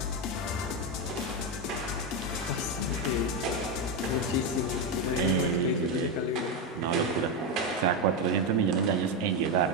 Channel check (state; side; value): normal; both; correlation 0.08